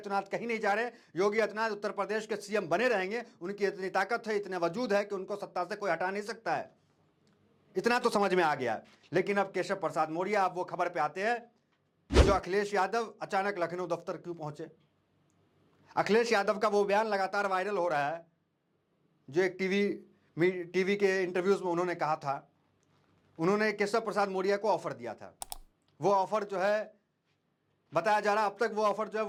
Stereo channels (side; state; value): both; identical; correlation 1.00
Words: कहीं नहीं जा रहे, योगी आदित्यनाथ उत्तर प्रदेश के सीएम बने रहेंगे। उनकी इतनी ताकत है, इतने वजूद है कि उनको सत्ता से कोई हटा नहीं सकता है, इतना तो समझ में आ गया। लेकिन अब केशव प्रसाद मौर्य, अब वो खबर पे आते हैं जो अखिलेश यादव अचानक लखनऊ दफ्तर क्यों पहुंचे। अखिलेश यादव का वो बयान लगातार वायरल हो रहा है जो एक टीवी के इंटरव्यूज में उन्होंने कहा था। उन्होंने केशव प्रसाद मौर्य को ऑफर दिया था, वो ऑफर जो है बताया जा रहा अब तक वो ऑफर जो है